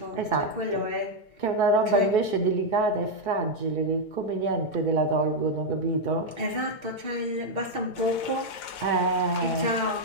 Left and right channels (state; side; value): late; right; 2.2 ms